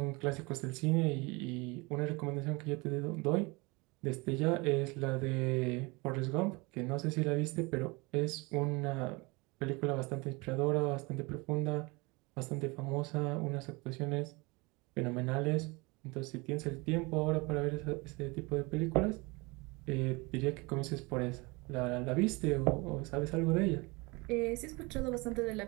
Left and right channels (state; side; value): quieter; left; 26.1 dB